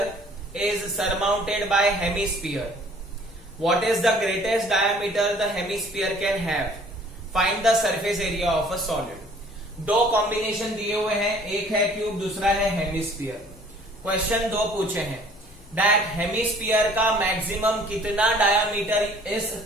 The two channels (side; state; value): left; noise; rumble, 23 dB below the sound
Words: is surmounted bye hemisphere. What is the greatest diameter the hemisphere can have? Find the surface area of a solid. दो combination दिए हुए हैं, एक है cube, दूसरा है hemisphere. Question 2 पूछे हैं दैट हेमिस्फीयर का मैक्सिमम कितना डायामीटर इस